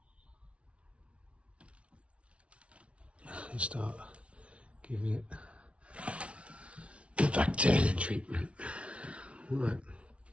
And start giving it the bacteria treatment. Right.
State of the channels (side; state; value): left; late; 0.061 ms